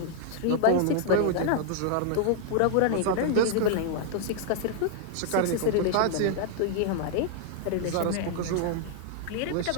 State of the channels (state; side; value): different; both; correlation -0.01